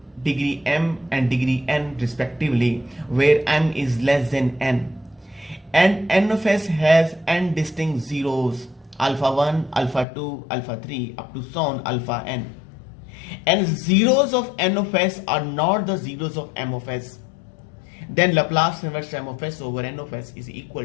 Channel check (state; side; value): drops out; right; at 10.1 s